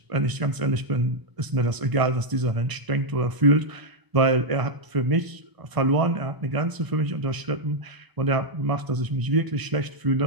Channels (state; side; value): late; left; 1.0 ms